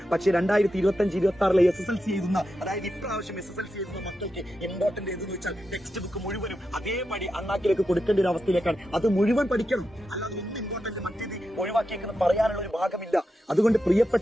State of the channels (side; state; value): both; normal; correlation 0.88